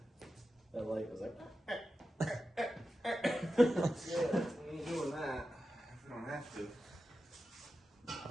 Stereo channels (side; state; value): both; normal; correlation 0.92